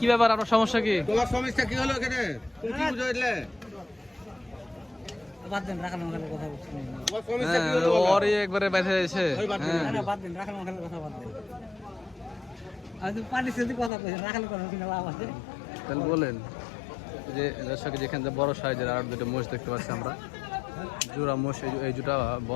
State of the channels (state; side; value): drops out; right; at 13.9 s